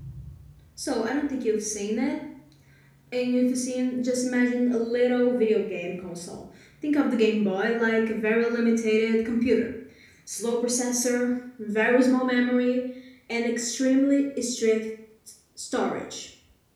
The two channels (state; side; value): identical; both; correlation 1.00